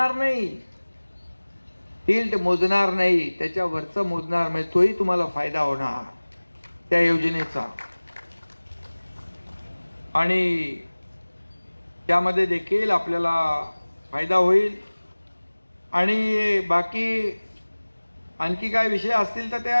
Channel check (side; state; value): both; inverted; correlation -1.00